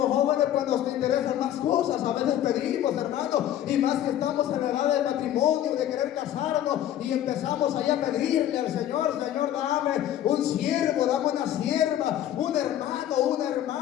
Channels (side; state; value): right; quieter; 11.7 dB